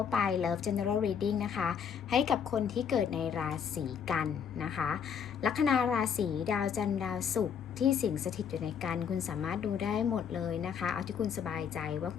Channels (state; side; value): quieter; right; 7.3 dB